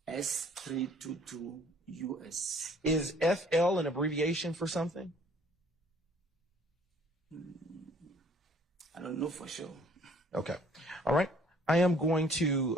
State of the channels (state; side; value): normal; both; correlation 0.57